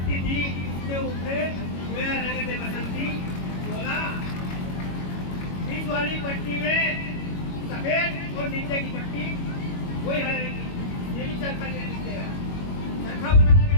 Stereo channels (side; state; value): right; late; 22 ms